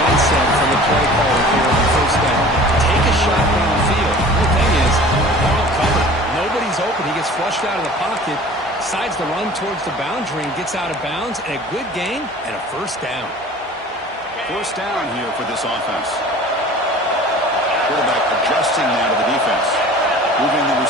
from the play caller here on the first down. Take a shot downfield. The thing is, they're all covered. Nobody's open. He gets flushed out of the pocket, decides to run towards the boundary and gets out of bounds, and a good gain and a first down. First down here for this offense. Quarterback adjusting now to the defense. Moving the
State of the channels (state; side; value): normal; both; correlation 0.44